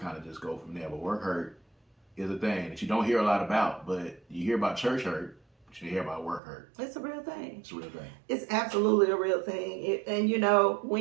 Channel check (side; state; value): left; drops out; at 6.4 s